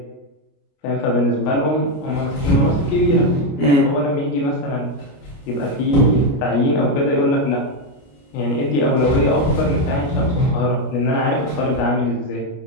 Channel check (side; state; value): right; late; 29 ms